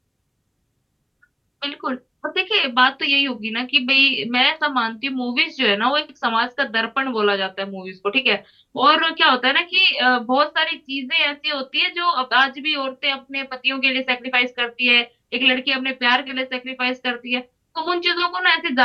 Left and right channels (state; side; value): identical; both; correlation 1.00